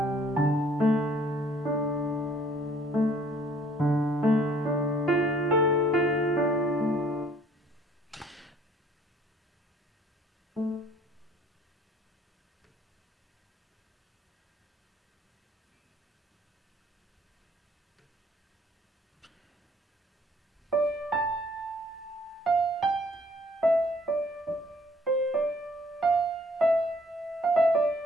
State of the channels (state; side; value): normal; both; correlation 0.59